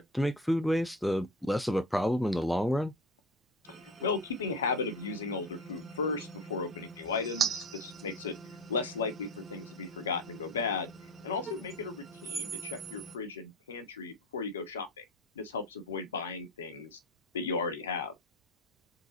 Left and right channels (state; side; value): normal; both; correlation 0.30